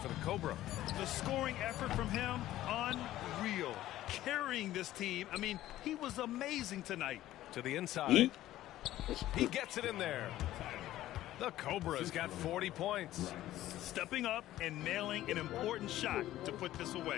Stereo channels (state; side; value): quieter; right; 14.3 dB